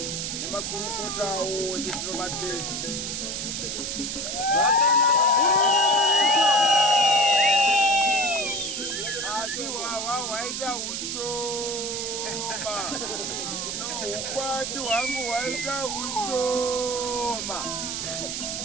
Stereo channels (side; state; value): right; noise; hiss, 3 dB below the sound